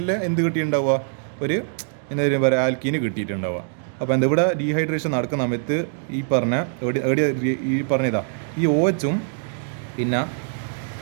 എന്ത് കിട്ടിയിട്ടുണ്ടാവുക, ഒരു എന്തായാലും പറയുക ആൽക്കീന് കിട്ടിയിട്ടുണ്ടാവുക. അപ്പോൾ എന്താ ഇവിടെ ഡീഹൈഡ്രേഷൻ നടക്കുന്ന സമയത്ത് ഈ പറഞ്ഞ ഈ പറഞ്ഞതാ ഈ OHും പിന്നെ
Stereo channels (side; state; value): left; silent; digital silence